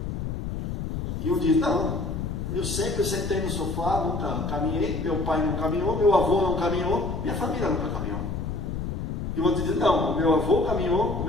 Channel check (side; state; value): left; noise; rumble, 4 dB below the sound